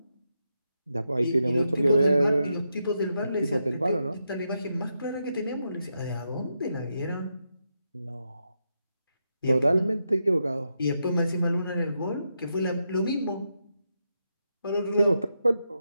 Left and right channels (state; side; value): inverted; both; correlation -0.84